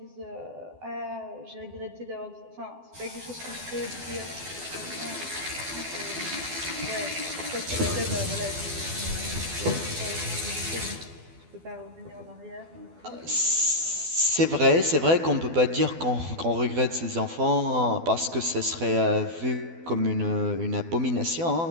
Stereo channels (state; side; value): late; left; 12 ms